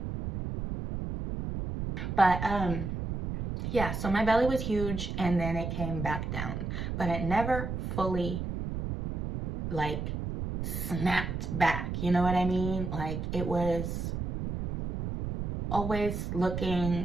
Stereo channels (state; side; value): noise; right; rumble, 4 dB below the sound